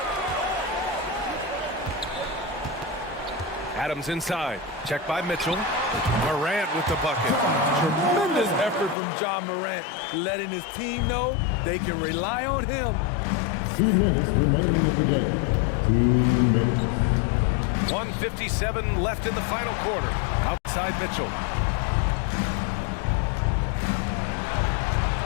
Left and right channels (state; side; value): drops out; right; at 9.0 s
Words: Adams inside. Check by Mitchell. Morant with the bucket. Tremendous effort from John Morant, letting his team know they can rely on him. 2 minutes remaining in the game. 2 minutes. 1:57 left in the final quarter. Outside Mitchell.